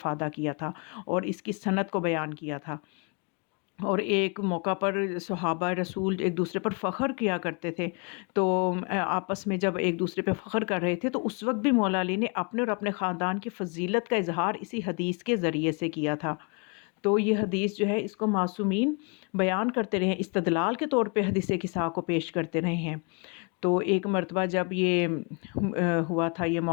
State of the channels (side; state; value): right; quieter; 34.3 dB